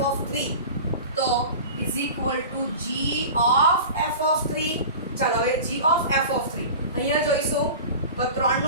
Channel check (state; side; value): inverted; both; correlation -0.35